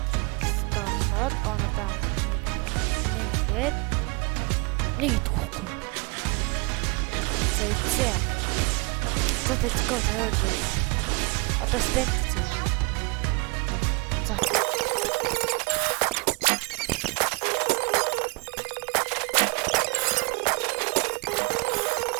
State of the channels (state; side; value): quieter; left; 30.4 dB